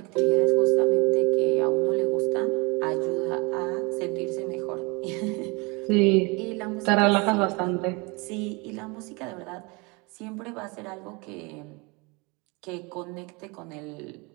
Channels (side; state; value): left; quieter; 28.1 dB